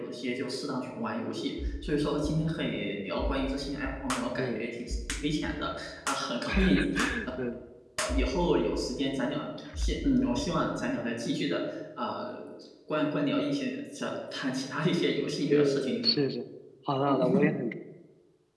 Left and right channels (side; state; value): both; identical; correlation 1.00